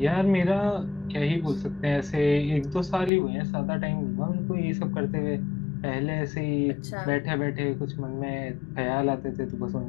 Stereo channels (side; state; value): right; drops out; at 3.1 s